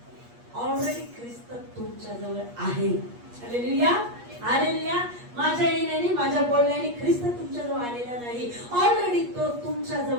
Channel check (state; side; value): late; left; 8.4 ms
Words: ऑलरेडी ख्रिस्त तुमच्या जवळ आहे. Hallelujah, hallelujah. माझ्या येण्याने, माझ्या बोलण्याने ख्रिस्त तुमच्या जवळ आलेला नाही. ऑलरेडी तो तुमच्या